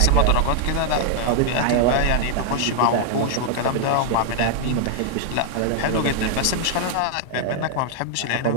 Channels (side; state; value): both; different; correlation 0.00